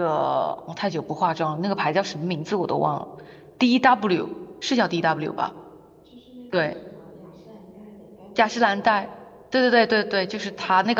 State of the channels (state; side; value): identical; both; correlation 1.00